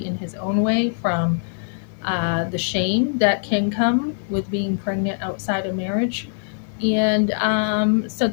in his own way from the shame that can come with being pregnant outside of marriage. And so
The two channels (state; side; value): silent; right; 56 dB below the other